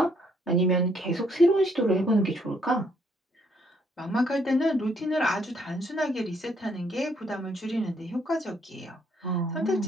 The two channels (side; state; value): both; normal; correlation 0.69